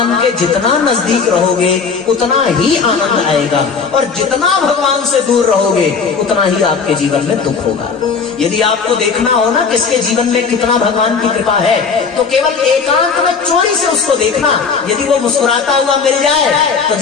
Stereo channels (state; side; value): quieter; right; 5.4 dB